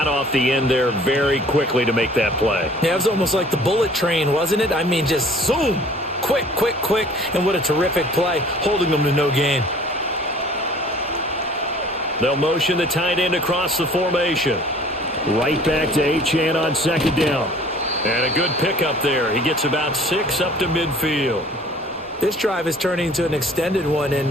off the end there very quickly to make that play. Yeah, it was almost like the bullet train, wasn't it? I mean, just zoom. Quick, quick, quick. And what a terrific play, holding them to no gain. They'll motion the tight end across the formation. Right back to Achane on second down. And a good pickup there. He gets about 6 up to midfield. This drive is turning into an extended one,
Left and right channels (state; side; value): normal; both; correlation 0.51